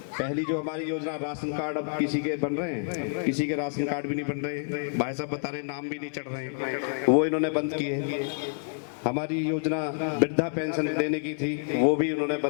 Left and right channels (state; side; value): silent; right; digital silence